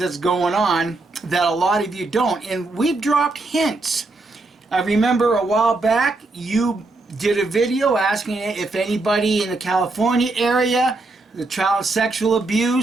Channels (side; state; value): left; quieter; 3.2 dB